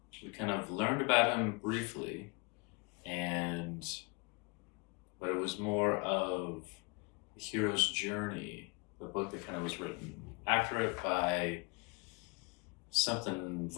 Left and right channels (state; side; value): quieter; right; 30.0 dB